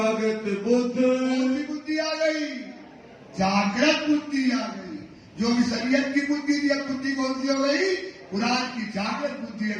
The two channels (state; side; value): identical; both; correlation 1.00